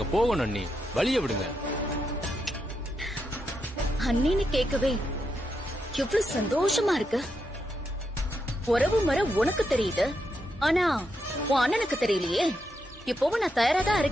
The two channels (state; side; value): normal; both; correlation 0.83